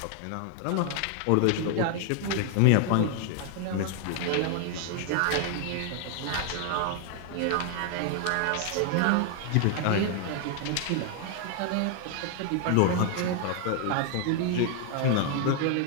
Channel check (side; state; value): both; different; correlation 0.00